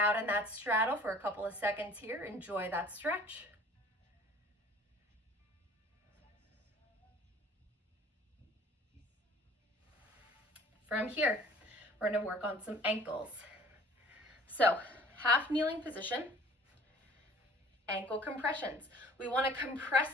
in that straddle for a couple of seconds here, enjoy that stretch. From here, we're going to work on some ankles. So, half kneeling position, ankle compressions. We want to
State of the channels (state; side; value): normal; both; correlation 0.50